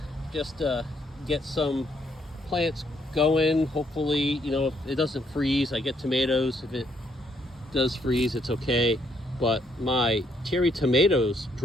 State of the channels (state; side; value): normal; both; correlation 0.71